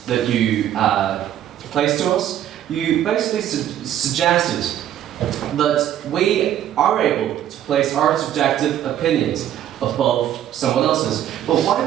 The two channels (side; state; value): left; quieter; 11.2 dB